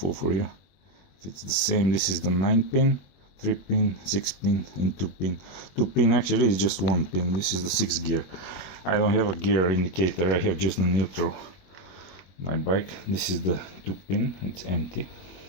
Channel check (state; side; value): late; right; 21 ms